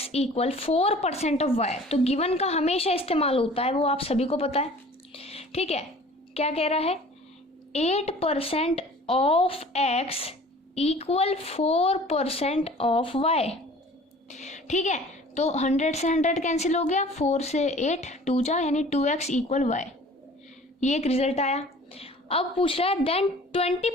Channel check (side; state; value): both; normal; correlation 0.47